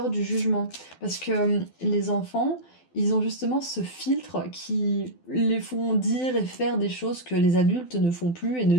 du jugement. Parce que les enfants, ils ont justement ce filtre qui les font dire et faire des choses que les adultes ne font plus et ne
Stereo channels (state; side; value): late; right; 12 ms